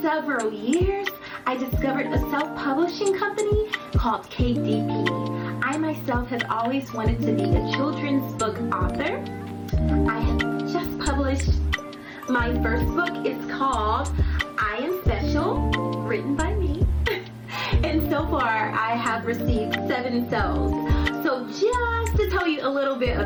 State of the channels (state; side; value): identical; both; correlation 1.00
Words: several years, I discovered a self-publishing company called KDP. I myself have always wanted to be a children's book author. I have just published my first book. It's called I Am Special, written by me. And so far, I have received 7 sales. So just to tell you a little bit